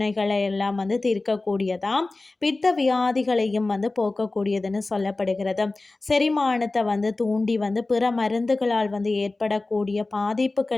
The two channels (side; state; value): right; quieter; 3.2 dB